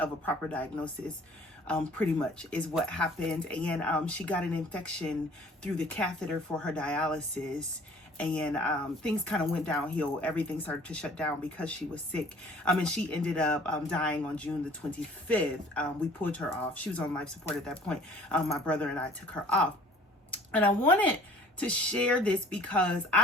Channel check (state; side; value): normal; both; correlation 0.52